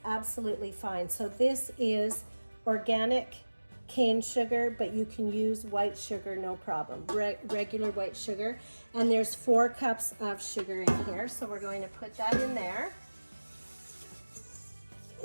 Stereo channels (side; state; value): both; inverted; correlation -1.00